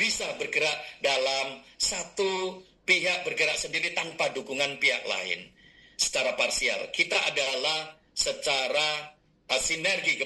bergerak dalam satu pihak bergerak sendiri tanpa dukungan pihak lain. Secara parsial, kita adalah secara sinergi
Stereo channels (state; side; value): identical; both; correlation 1.00